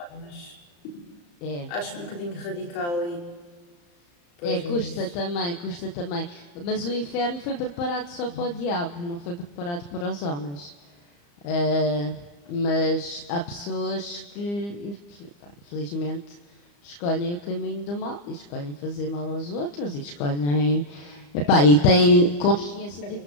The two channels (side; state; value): right; late; 35 ms